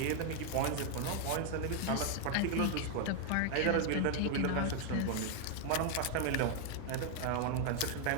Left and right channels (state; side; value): different; both; correlation 0.00